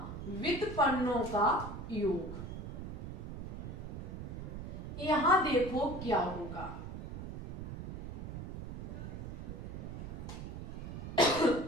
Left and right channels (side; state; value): right; noise; rumble, 8 dB below the sound